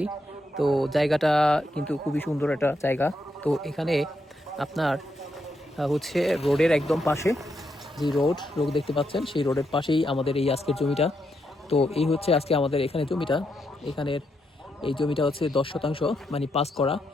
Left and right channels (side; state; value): both; normal; correlation 0.81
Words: তো জায়গাটা কিন্তু খুবই সুন্দর একটা জায়গা। তো এখানে আপনার হচ্ছে রোডের একদম পাশে যে রোড দেখতে পাচ্ছেন, সেই রোডের পাশেই আমাদের এই আজকের জমিটা। তো এই হচ্ছে আজকে আমাদের এখানে জমিটা। এখানের এই জমিটা হচ্ছে 10 শতাংশ, মানে পাস করা।